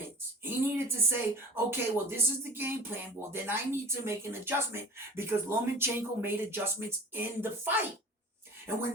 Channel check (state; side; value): normal; both; correlation 0.38